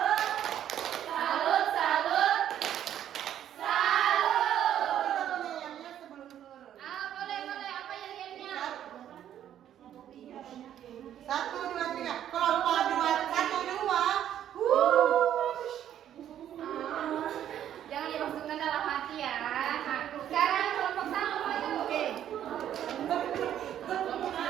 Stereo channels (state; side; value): quieter; left; 10.7 dB